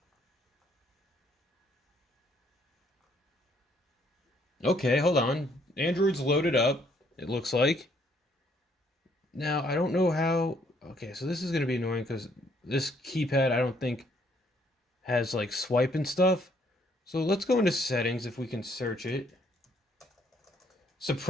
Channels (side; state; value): both; normal; correlation 0.67